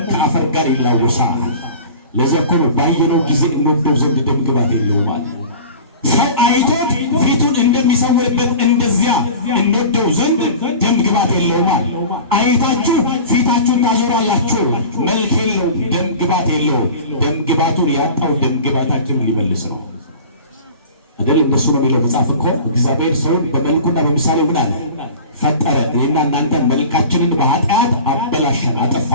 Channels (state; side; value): inverted; both; correlation -0.38